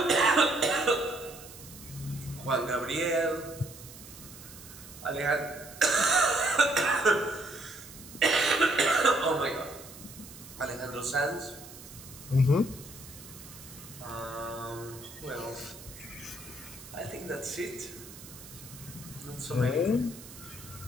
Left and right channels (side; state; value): right; noise; hiss, 16 dB below the sound